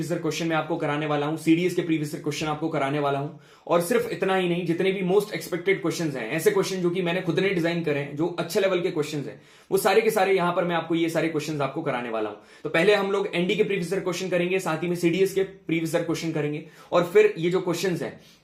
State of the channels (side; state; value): both; identical; correlation 1.00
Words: ईयर क्वेश्चन में आपको कराने वाला हूं, सीडीएस के प्रीवियस ईयर क्वेश्चन आपको कराने वाला हूं। और सिर्फ इतना ही नहीं, जितने भी मोस्ट एक्सपेक्टेड क्वेश्चंस हैं, ऐसे क्वेश्चन जो कि मैंने खुद ने डिजाइन करे हैं, जो अच्छे लेवल के क्वेश्चंस हैं, वो सारे के सारे यहां पर मैं आपको ये सारे क्वेश्चंस आपको कराने वाला हूं। तो पहले हम लोग एनडी के प्रीवियस ईयर क्वेश्चन करेंगे, साथ ही में सीडीएस के प्रीवियस ईयर क्वेश्चन करेंगे, और फिर ये जो क्वेश्चंस हैं